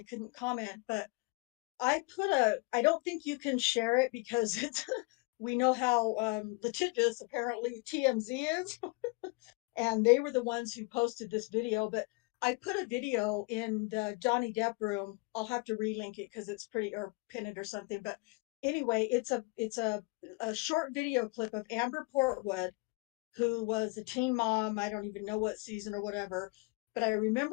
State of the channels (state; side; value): quieter; right; 27.3 dB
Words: couldn't comment, but I don't think you can share it because we know how litigious apparently TMZ is. And they were the ones who posted this video, but I put a video in the Johnny Depp room. I'll have to relink it because it's pretty, or pin it or something. But anyway, it's a short video clip of Amber Portwood, who was a teen mom. I don't even know what season or whatever, but I